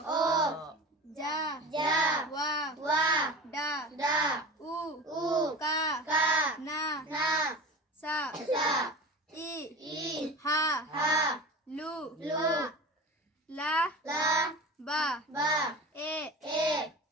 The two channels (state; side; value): normal; both; correlation 0.33